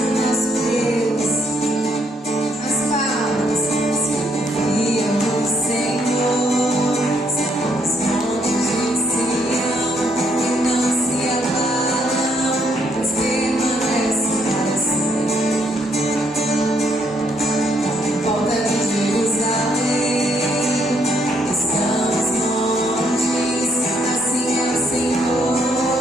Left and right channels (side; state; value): both; normal; correlation 0.72